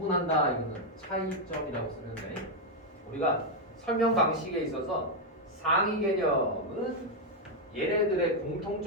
이거는 차이점이라고 쓰면 돼. 우리가 설명 방식에 있어서 상위 개념은 얘네들의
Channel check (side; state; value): both; normal; correlation 0.01